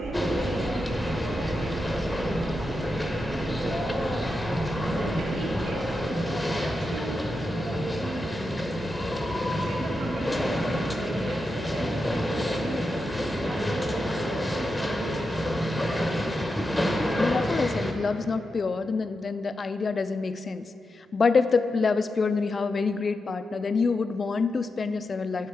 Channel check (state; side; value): normal; both; correlation 0.88